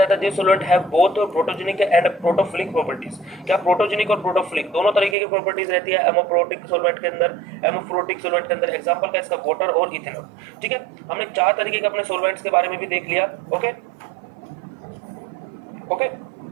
है, this solvent have both protogenic and protophilic properties. क्या प्रोटोजेनिक और प्रोटोफिलिक दोनों तरीके की प्रॉपर्टीज रहती है एमोफ्रोटिक सॉल्वेंट के अंदर। एमोफ्रोटिक सॉल्वेंट के अंदर एग्जांपल का इसका वाटर और इथेनॉल। ठीक है, हमने 4 तरीके के अपने सॉल्वेंट्स के बारे में भी देख लिया। ओके ओके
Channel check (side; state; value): left; drops out; at 5.2 s